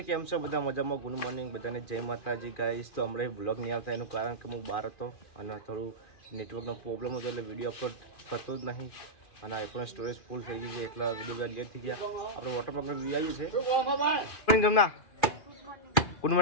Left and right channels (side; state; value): right; late; 2.4 ms